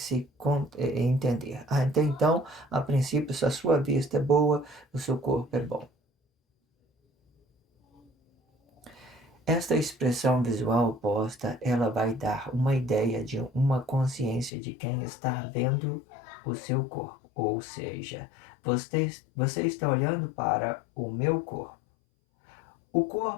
entender. Então, a princípio, se a sua vista é boa, o seu corpo é bom. Esta expressão visual oposta, ela vai dar uma ideia de uma consciência de quem está vendo o seu corpo. Ou seja, você está olhando para o meu corpo. O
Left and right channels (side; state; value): right; drops out; at 14.5 s